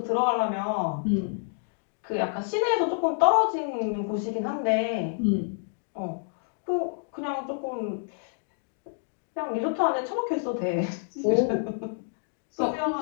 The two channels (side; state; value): right; silent; digital silence